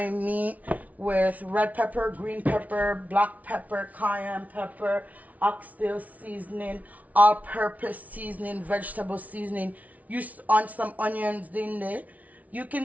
meat with red pepper, green pepper, black pepper, cayenne pepper, oxtail seasoning, all-purpose seasoning, vegetable seasoning. Use on some onions in there. You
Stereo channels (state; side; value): late; left; 0.071 ms